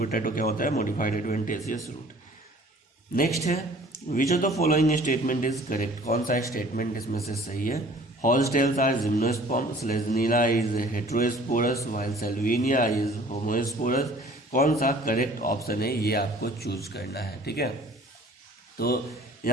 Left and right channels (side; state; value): both; normal; correlation 0.51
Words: क्या होता है, मॉडिफाइड एडवेंटिशियस रूट। नेक्स्ट है, which of the following statement is correct, कौन सा स्टेटमेंट इसमें से सही है। Horsetails are gymnosperm, Selaginella is heterosporous, while Salvinia is homosporous. कौन सा करेक्ट ऑप्शन है ये आपको चूज करना है, ठीक है। तो